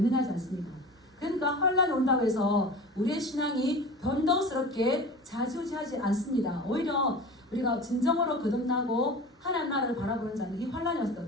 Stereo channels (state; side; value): normal; both; correlation 0.35